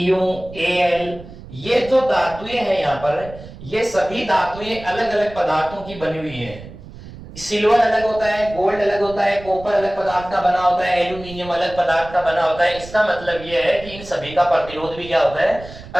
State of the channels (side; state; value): right; noise; rumble, 16 dB below the sound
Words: Al, ये जो धातुएं हैं यहां पर, ये सभी धातुएं अलग अलग पदार्थों की बनी हुई हैं। सिल्वर अलग होता है, गोल्ड अलग होता है, कॉपर अलग पदार्थ का बना होता है, एल्यूमिनियम अलग पदार्थ का बना होता है। इसका मतलब यह है कि इन सभी का प्रतिरोध भी क्या होता है,